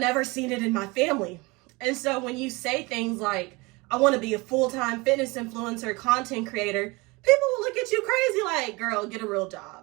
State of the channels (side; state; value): left; quieter; 24.9 dB